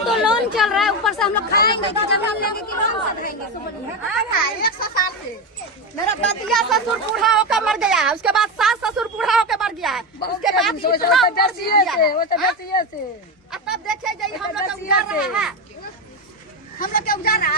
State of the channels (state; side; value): normal; both; correlation 0.15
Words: लोन चल रहा है, ऊपर से हम लोग खाएंगे कि जमीन लेंगे कि लोन से खाएंगे? 100 साल से मेरा दतिया ससुर बूढ़ा होकर मर गया है, उसके बाद सास ससुर बूढ़ा होकर मर गया है, उसके बाद अब तब देखे जाइए हम लोग का उजाड़ रहा है, हम लोग के उजाड़